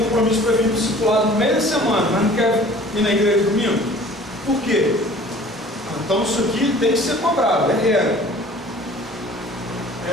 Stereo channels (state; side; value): normal; both; correlation 0.48